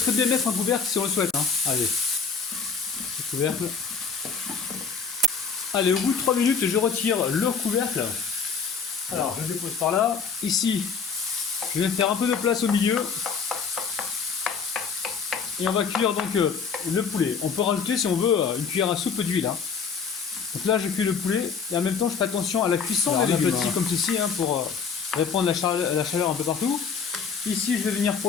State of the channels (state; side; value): quieter; right; 5.8 dB